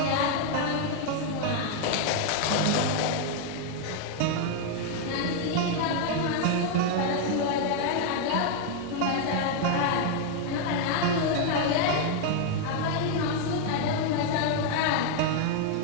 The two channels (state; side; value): different; both; correlation 0.00